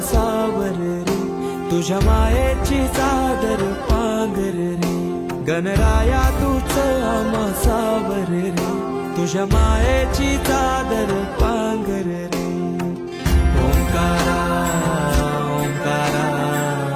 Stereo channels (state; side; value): identical; both; correlation 1.00